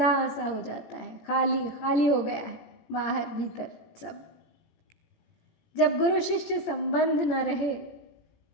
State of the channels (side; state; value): right; late; 17 ms